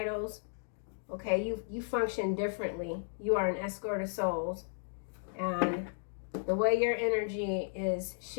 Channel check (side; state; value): right; silent; digital silence